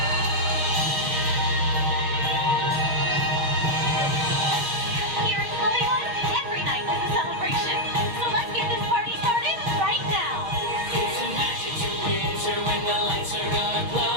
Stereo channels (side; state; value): left; late; 6.5 ms